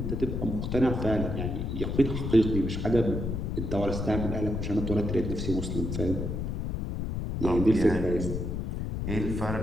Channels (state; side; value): noise; left; rumble, 3 dB below the sound